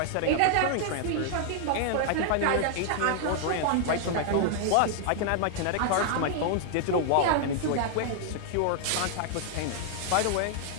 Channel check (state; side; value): different; both; correlation 0.00